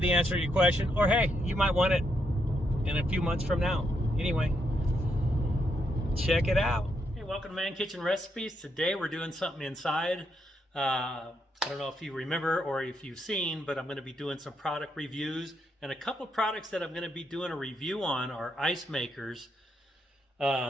answer to your question, or hey, you might want it in a few months from now. Anyway, check it out. Hey, welcome to Man Kitchen Recipes. Today we're doing something inside. I don't know if you remember or if you've seen, but I'm going to be doing some product reviews, and a couple of products that I'm going to be doing a review on are ice makers.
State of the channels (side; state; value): both; normal; correlation 0.79